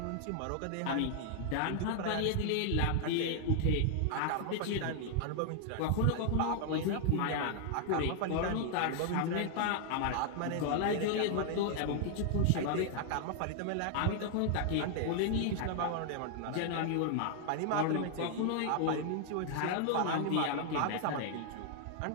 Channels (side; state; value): both; different; correlation 0.00